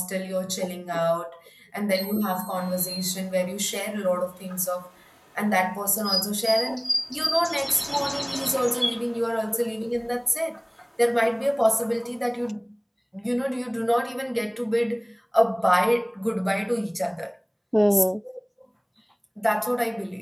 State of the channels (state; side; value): identical; both; correlation 1.00